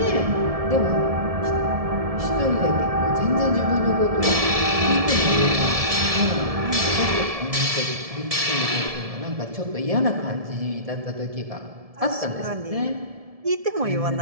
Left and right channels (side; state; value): left; late; 1.7 ms